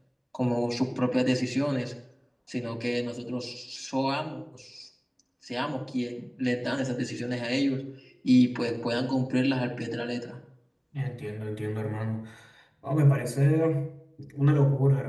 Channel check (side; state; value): both; identical; correlation 1.00